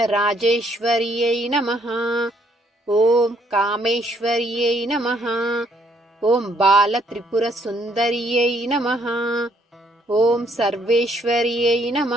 నమః. ఓం కామేశ్వర్యై నమః. ఓం బాలత్రిపురసుందర్యై నమః. ఓం సర్వేశ్వర్యై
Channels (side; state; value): both; normal; correlation 0.69